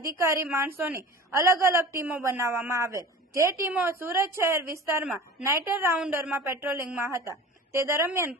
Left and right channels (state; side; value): normal; both; correlation 0.37